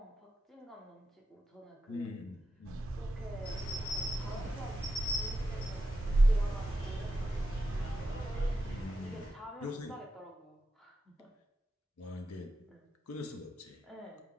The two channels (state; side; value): normal; both; correlation 0.88